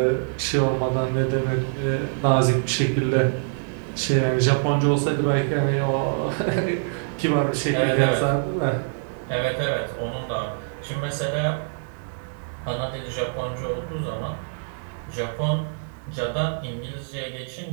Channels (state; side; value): silent; left; digital silence